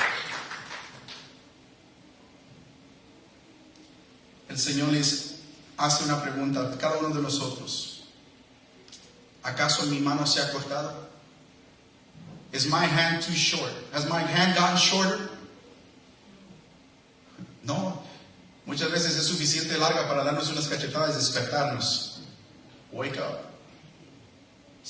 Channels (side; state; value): both; identical; correlation 1.00